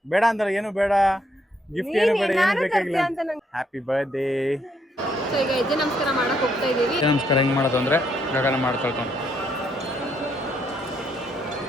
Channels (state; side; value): normal; both; correlation 0.73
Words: ಬೇಡ ಅಂದ್ರೆ ಏನು ಬೇಡ, ಗಿಫ್ಟ್ ಏನು ಬೇಡ, ಏನು ಬೇಕಾಗಿಲ್ಲ. Happy birthday. ಸೊ ಈಗ ಹೆಜ್ಜೆ ನಮಸ್ಕಾರ ಮಾಡಕ್ ಹೋಗ್ತಾ ಇದೀವಿ. ನಮಸ್ಕಾರ ಹೆಂಗ್ ಮಾಡೋದು ಅಂದ್ರೆ ಗಗನ ಮಾಡ್ಕೊಳ್ತಾನೆ.